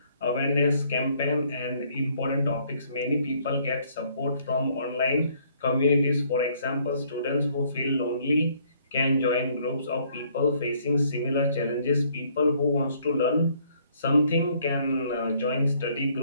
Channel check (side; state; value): both; inverted; correlation -0.64